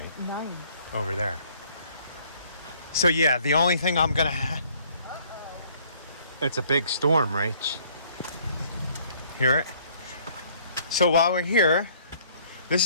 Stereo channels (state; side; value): inverted; both; correlation -0.60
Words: Nice. Over there. So yeah, the only thing I'm going to have... It's a big storm, Rach. Hear it? So while we're here, this